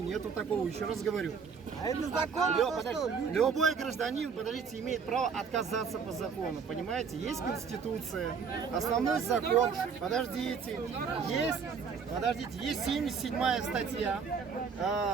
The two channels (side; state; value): left; quieter; 6.0 dB